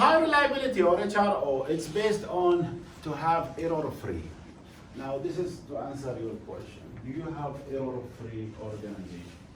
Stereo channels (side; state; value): both; identical; correlation 1.00